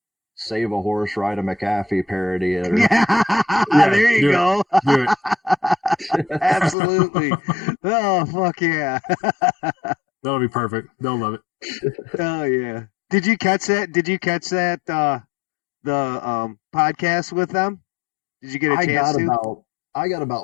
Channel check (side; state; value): right; drops out; at 6.8 s